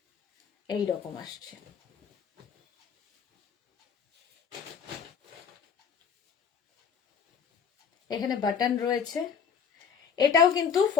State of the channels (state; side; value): quieter; right; 6.9 dB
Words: এই রকম আসছে। এখানে বাটন রয়েছে। এটাও কিন্তু